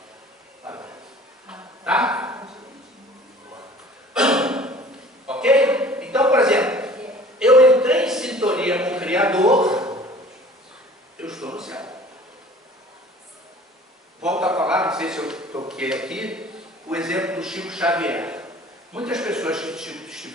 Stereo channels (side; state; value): both; normal; correlation 0.48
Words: Tá? Ok? Então, por exemplo, eu entrei em sintonia com o Criador, eu estou no céu. Volto a falar, não sei se eu toquei aqui, o exemplo do Chico Xavier. Muitas pessoas que